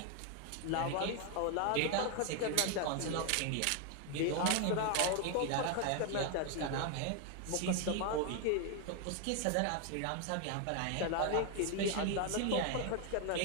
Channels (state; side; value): different; both; correlation 0.01